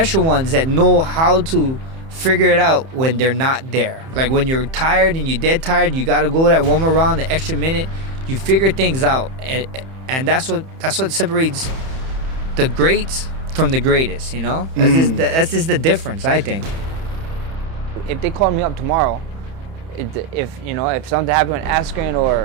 ones that know how to figure it out when they're not there. Like when you're tired and you're dead tired, you gotta go that one more round, the extra minute. You figure things out, and that's what separates the greats from the greatest. You know, that's just the difference, I think. If they call me up tomorrow, if something happened with Askren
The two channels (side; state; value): left; late; 31 ms